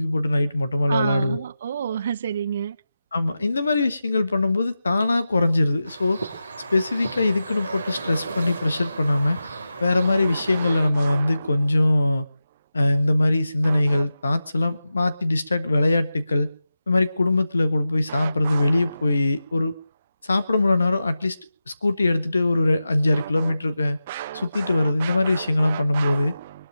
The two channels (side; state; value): both; inverted; correlation -0.92